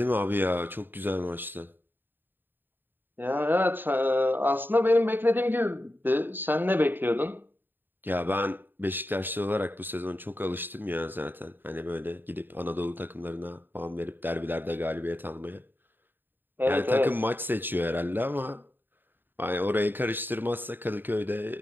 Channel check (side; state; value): left; late; 0.094 ms